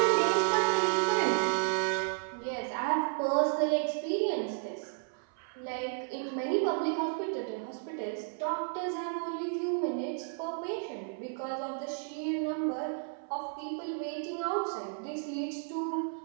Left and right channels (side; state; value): left; silent; 56 dB below the other